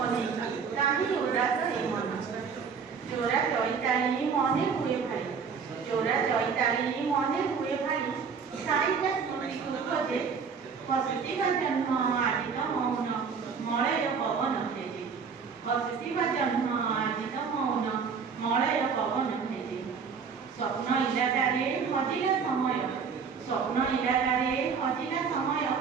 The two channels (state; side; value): quieter; left; 6.0 dB